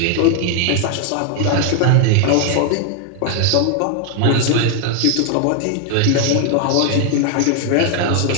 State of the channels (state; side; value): different; both; correlation 0.00